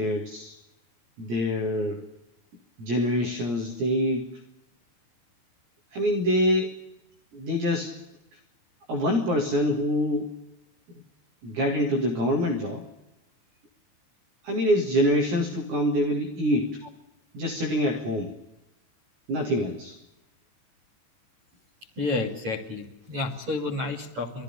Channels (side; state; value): left; late; 17 ms